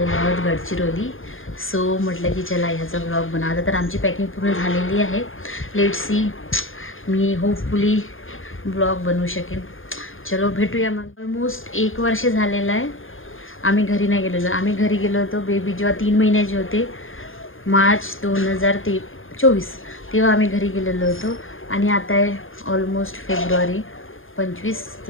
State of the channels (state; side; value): late; right; 0.59 ms